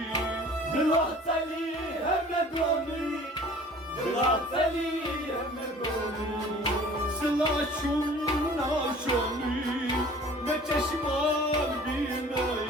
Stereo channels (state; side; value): normal; both; correlation 0.48